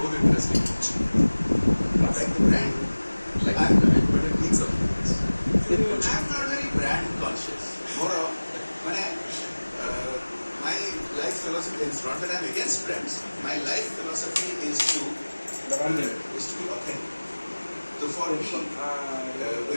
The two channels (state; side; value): inverted; both; correlation -1.00